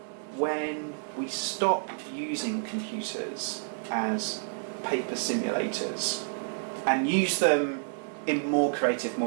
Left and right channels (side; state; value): left; silent; digital silence